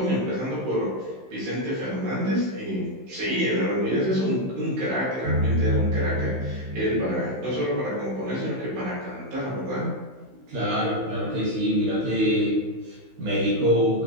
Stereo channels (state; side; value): late; left; 16 ms